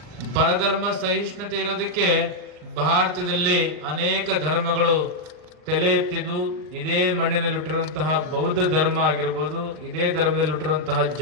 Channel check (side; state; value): left; late; 39 ms